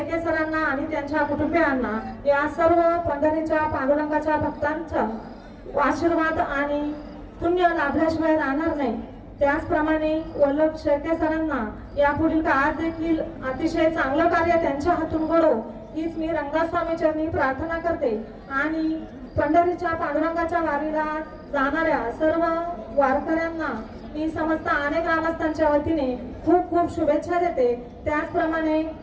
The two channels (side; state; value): both; identical; correlation 1.00